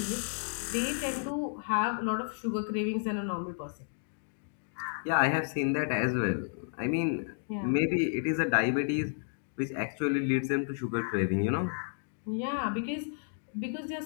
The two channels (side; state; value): right; silent; digital silence